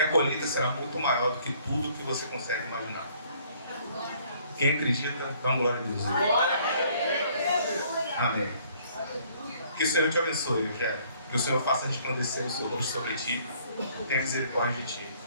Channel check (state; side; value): inverted; both; correlation -0.61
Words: colheita será muito maior do que tudo que você consegue imaginar. Quem acredita, dá uma glória a Deus. Amém. Que o Senhor te abençoe, Eugênio. Que o Senhor faça resplandecer o seu rosto sobre ti, tenha misericórdia de ti.